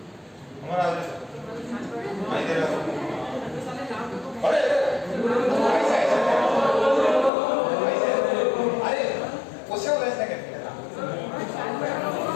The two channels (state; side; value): drops out; right; at 7.3 s